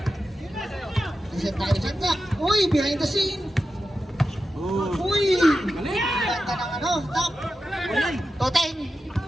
Reset tayo sa clock. Uy, behind the scene. Uy! Ganda ng ano, top. Toteng.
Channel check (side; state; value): both; normal; correlation 0.91